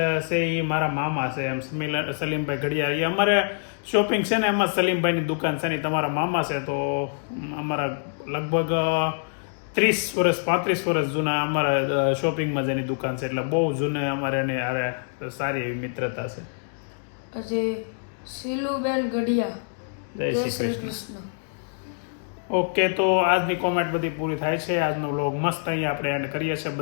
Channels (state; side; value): silent; right; digital silence